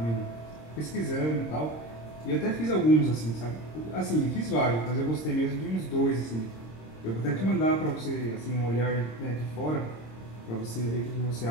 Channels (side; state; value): right; late; 26 ms